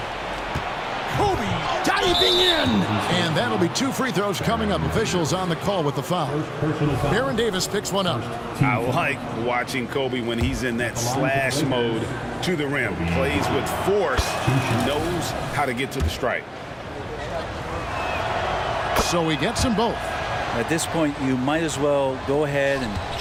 Kobe diving in. And that'll be 2 free throws coming up. Officials on the call with the foul. Baron Davis picks one up. I like watching Kobe when he's in that slash mode to the rim. Plays with force, knows how to get to the stripe. So he gets them both. At this point, you might as well go ahead and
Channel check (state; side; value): identical; both; correlation 1.00